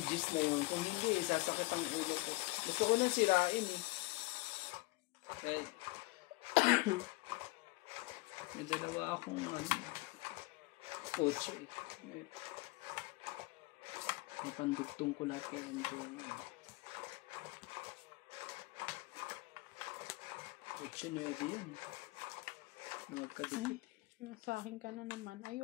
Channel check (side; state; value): right; quieter; 23.2 dB